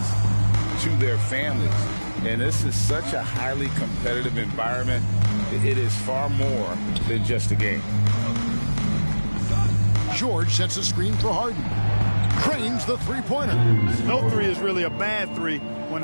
to their families. And this is such a highly competitive environment. It is far more than just a game. George sets a screen for Harden. Cranes the three-pointer. No three is really a bad three when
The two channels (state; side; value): inverted; both; correlation -1.00